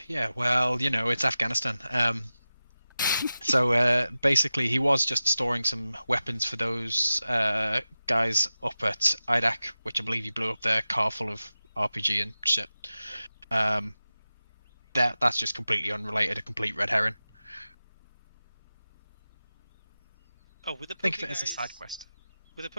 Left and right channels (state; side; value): inverted; both; correlation -0.94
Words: Yeah. Well, it's Afghanistan. So basically, he was just storing some weapons for those guys up at IDAC, which I believe he blew up their car full of RPG and shit. That's just completely unrelated, a complete red herring. Oh, with the Think poker of it as a guys... side quest. Were the